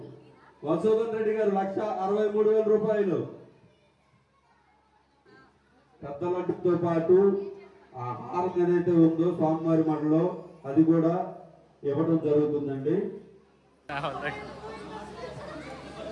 మధుసూదన్ రెడ్డి గారు 1,63,000 రూపాయలు. పెద్ద లడ్డుతో పాటు ఆ హారం ఏదైతే ఉందో స్వామివారి మఠలో అది కూడా ఇవ్వడం జరుగుతుందండి.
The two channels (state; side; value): identical; both; correlation 1.00